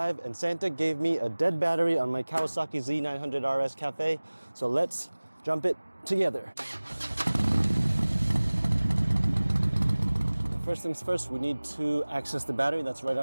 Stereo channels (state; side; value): inverted; both; correlation -1.00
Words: and Santa gave me a dead battery on my Kawasaki Z900 RS Cafe. So let's jump it together. First things first, we need to access the battery that's right